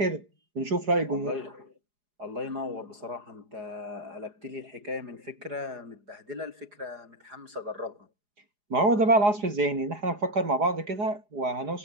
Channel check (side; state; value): left; late; 4.8 ms